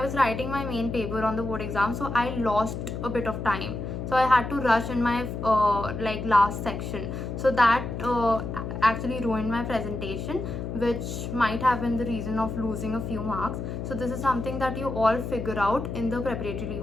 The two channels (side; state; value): left; noise; hum, 5 dB below the sound